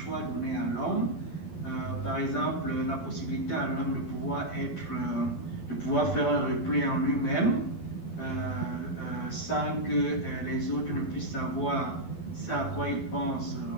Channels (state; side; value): late; right; 12 ms